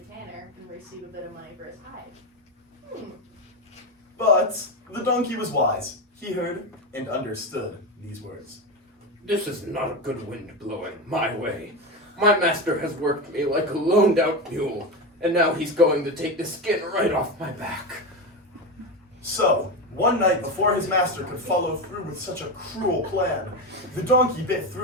tanner and receive a bit of money for his hide. But the donkey was wise. He heard and understood these words. This is not a good wind blowing my way. My master has worked me like a loaned out mule, and now he's going to take the skin right off my back. So, one night before his master could follow through with such a cruel plan, the donkey bit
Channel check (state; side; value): normal; both; correlation 0.17